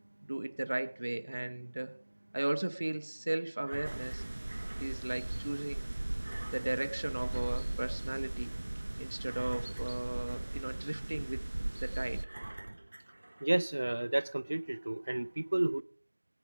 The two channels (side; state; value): both; inverted; correlation -1.00